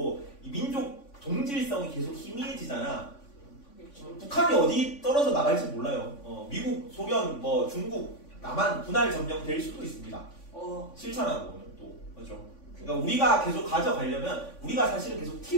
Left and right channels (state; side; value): late; right; 3.5 ms